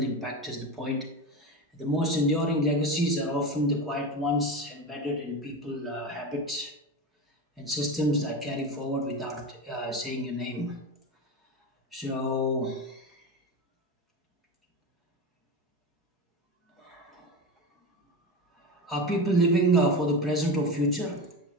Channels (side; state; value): both; normal; correlation 0.23